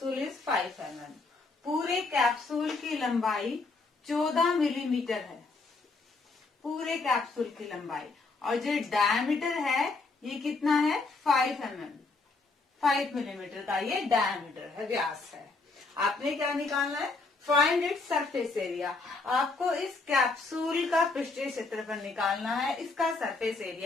is 5 mm. पूरे कैप्सूल की लंबाई 14 मिलीमीटर है, पूरे कैप्सूल की लंबाई। और जो डायमीटर है ये कितना है, 5 mm, 5 मिलीमीटर का ये डायमीटर है, व्यास है। आपने क्या निकालना है, फाइंड इट्स सरफेस एरिया। आपको इस कैप्सूल का पृष्ठीय क्षेत्रफल निकालना है, इसका सरफेस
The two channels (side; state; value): right; quieter; 3.8 dB